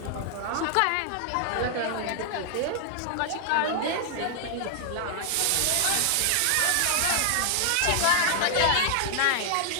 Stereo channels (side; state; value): both; different; correlation 0.00